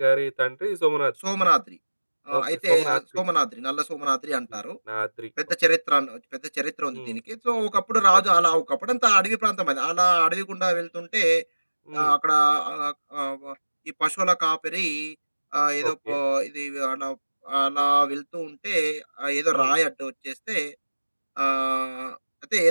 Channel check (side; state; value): both; inverted; correlation -1.00